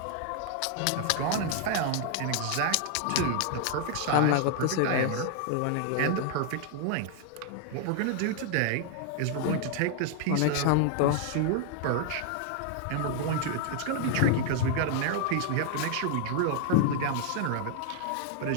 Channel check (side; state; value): both; different; correlation 0.00